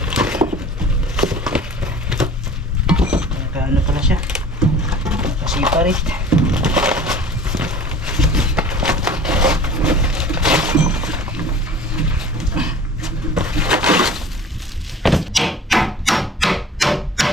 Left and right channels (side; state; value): both; normal; correlation 0.44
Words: Ano pala siya? Separate.